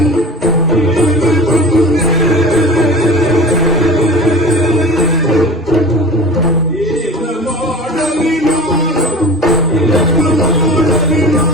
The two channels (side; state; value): both; normal; correlation 0.37